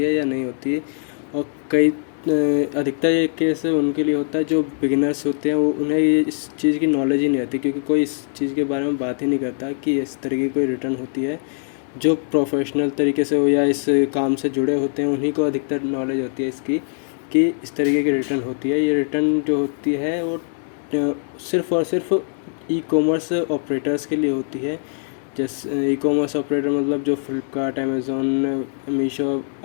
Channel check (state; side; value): silent; right; 64 dB below the other